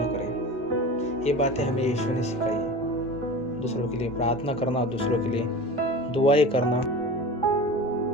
करें। ये बातें हमें यीशु ने सिखाई है। दूसरों के लिए प्रार्थना करना, दूसरों के लिए दुआएं करना।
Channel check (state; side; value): normal; both; correlation 0.33